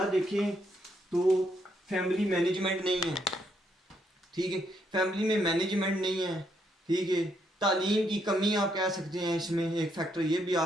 دیکھیں تو فیملی مینجمنٹ نہیں ہے، ٹھیک ہے، فیملی میں مینجمنٹ نہیں ہے، ٹھیک ہے. تعلیم کی کمی آپ کہہ سکتے ہیں، اس میں ایک فیکٹر یہ بھی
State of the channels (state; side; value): normal; both; correlation 0.75